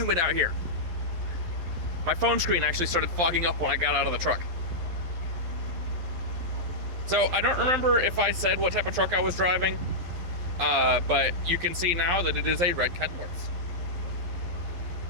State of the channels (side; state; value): left; late; 11 ms